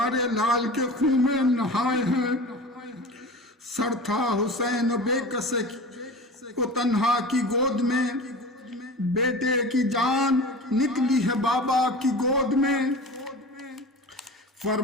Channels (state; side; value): normal; both; correlation 0.35